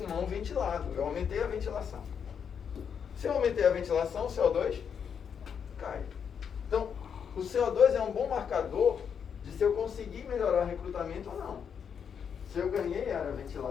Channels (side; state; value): right; quieter; 7.3 dB